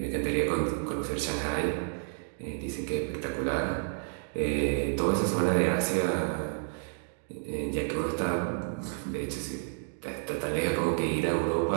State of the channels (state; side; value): silent; left; 58 dB below the other